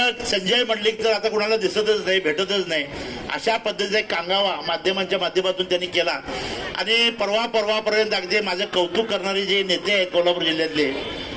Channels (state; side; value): identical; both; correlation 1.00